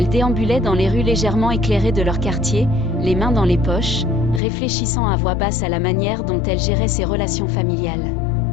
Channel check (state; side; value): drops out; right; at 4.4 s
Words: déambulait dans les rues légèrement éclairées de leur quartier, les mains dans les poches, réfléchissant à voix basse à la manière dont elle gérait ses relations familiales.